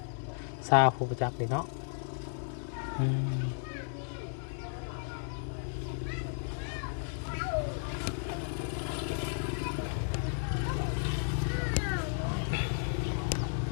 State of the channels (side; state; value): right; silent; digital silence